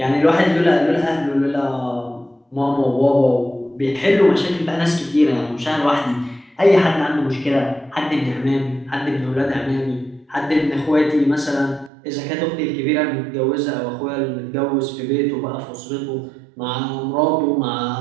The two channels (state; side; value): drops out; left; at 11.9 s